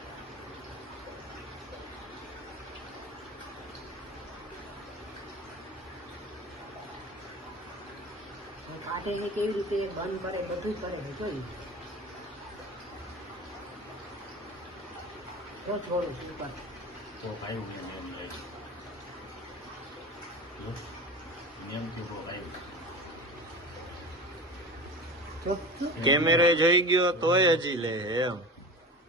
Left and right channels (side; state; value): both; normal; correlation 0.33